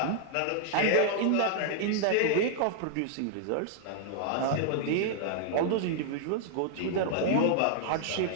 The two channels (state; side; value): different; both; correlation 0.00